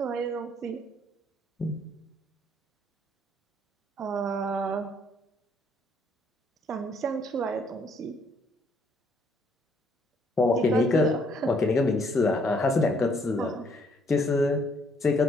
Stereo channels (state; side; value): normal; both; correlation 0.67